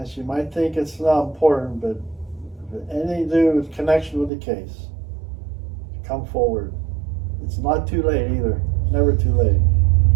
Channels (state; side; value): drops out; left; at 4.3 s